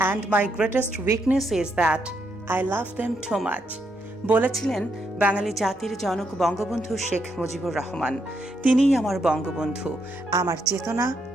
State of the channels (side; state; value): both; normal; correlation 0.78